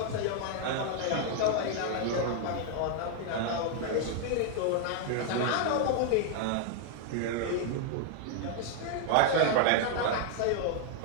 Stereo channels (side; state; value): both; different; correlation 0.00